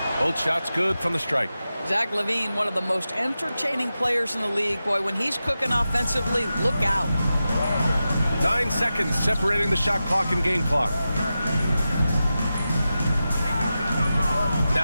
Both shots good from the strike. Zach LaVine, one of the most entertaining players in the league. Boy, when he's cooking offensively, look out. 9 seconds separating the shot clock and game clock.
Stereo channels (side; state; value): both; inverted; correlation -0.92